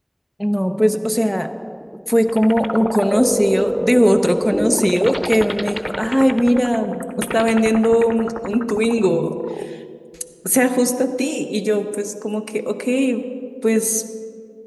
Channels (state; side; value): identical; both; correlation 1.00